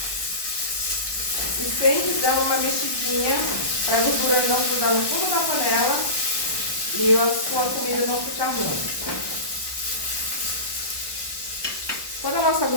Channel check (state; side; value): late; right; 1.2 ms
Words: E sempre dando uma mexidinha para a gordura não grudar no fundo da panela e a sua comida não ficar ruim. Quando a nossa